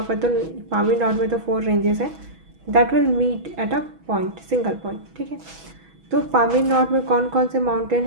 पर तो पामीर नॉट में तो 4 रेंजेस है, that will meet at a point, single point. ठीक है, तो पामीर नॉट में कौन कौन से माउंटेन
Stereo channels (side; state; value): left; late; 6.1 ms